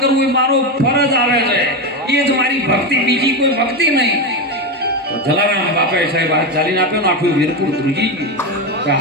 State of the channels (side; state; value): both; normal; correlation 0.14